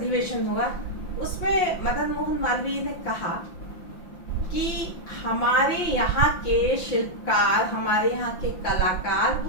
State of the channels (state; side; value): late; right; 5.9 ms